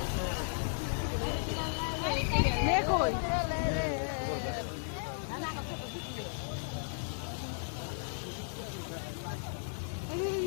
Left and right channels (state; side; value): silent; right; digital silence